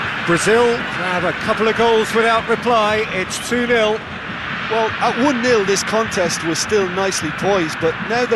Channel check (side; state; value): both; identical; correlation 1.00